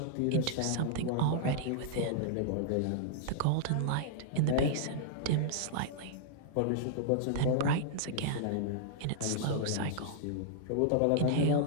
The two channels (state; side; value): different; both; correlation -0.01